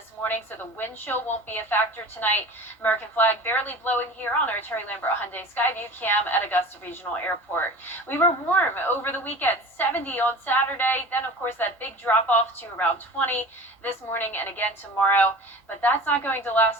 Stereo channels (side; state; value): both; normal; correlation 0.37